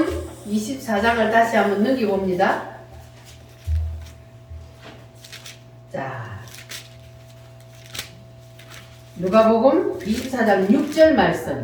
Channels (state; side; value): identical; both; correlation 1.00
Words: 24장을 다시 한번 넘겨봅니다. 자, 누가복음 24장 6절